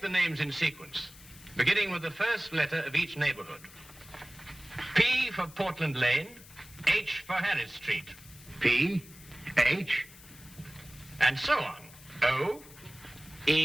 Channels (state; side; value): noise; left; hiss, 20 dB below the sound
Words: the names in sequence, beginning with the first letter of each neighborhood. P for Portland Lane, H for Harris Street. P, H, And so on. O,